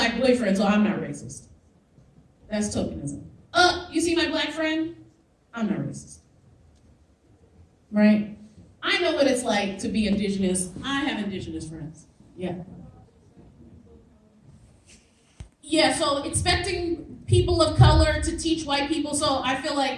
boyfriend, so I'm not racist. That's tokenism. You see my black friend? I'm not racist. Right? I know what it's like to be indigenous. I have indigenous friends. Yeah. Yeah, so expecting people of color to teach white people. So I feel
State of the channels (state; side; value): identical; both; correlation 1.00